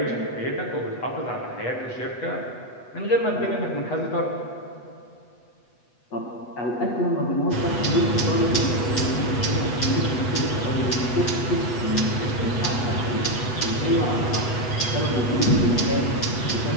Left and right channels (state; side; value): late; right; 8.2 ms